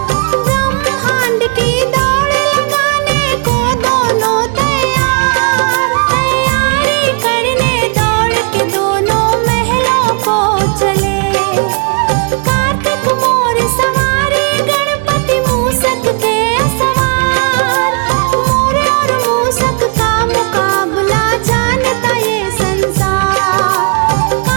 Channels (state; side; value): quieter; left; 38.5 dB